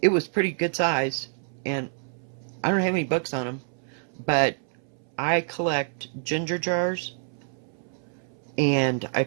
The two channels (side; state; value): left; silent; 60 dB below the other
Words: it was pretty good size. And I don't have any books on them. But I collect ginger jars. And I